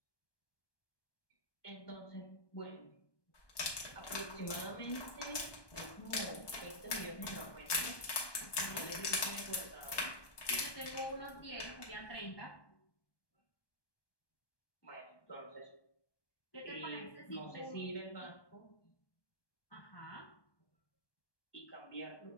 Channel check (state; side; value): late; right; 1.2 ms